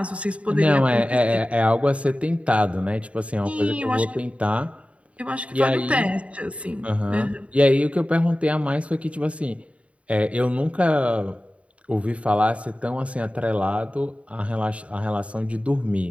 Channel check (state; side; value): late; left; 0.064 ms